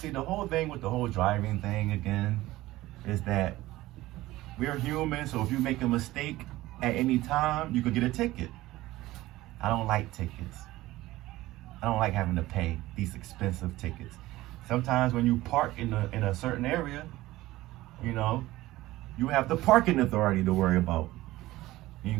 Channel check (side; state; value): left; quieter; 17.3 dB